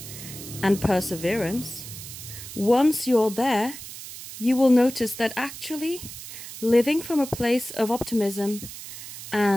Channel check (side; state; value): right; noise; hiss, 12 dB below the sound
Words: and perseverance, once you're there, you will notice that actually living from a place of optimism